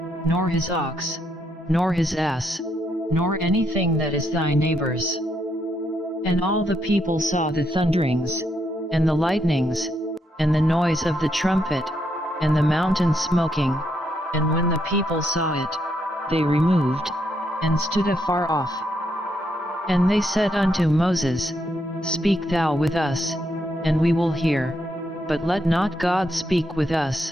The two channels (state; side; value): normal; both; correlation 0.77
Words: nor his ox, nor his ass, nor anything that is thy neighbor's. And all the people saw the thunderings, and the lightnings, and the noise of the trumpet, and the mountain smoking, and when the people saw it, they removed, and stood afar off. And they said unto Moses, Speak thou with us, and we will hear, but let not God speak with